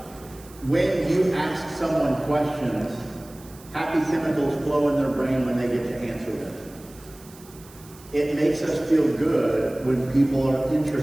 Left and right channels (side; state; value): right; noise; hiss, 22 dB below the sound